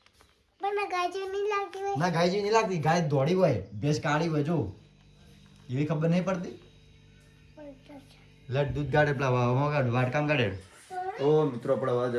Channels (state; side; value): identical; both; correlation 1.00